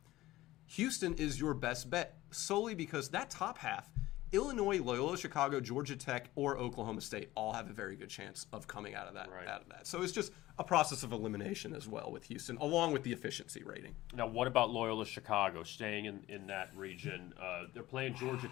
Houston is your best bet, solely because that top half, Illinois, Loyola, Chicago, Georgia Tech, or Oklahoma State all have a very good chance of coming out of that. Right. So it's just a process of elimination as well with Houston, along with the efficiency rating. Now, what about Loyola, Chicago, staying in that region? They're playing Georgia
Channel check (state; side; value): quieter; right; 16.9 dB